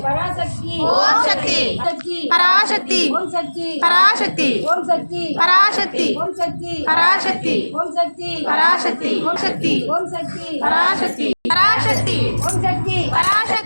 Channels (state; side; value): inverted; both; correlation -1.00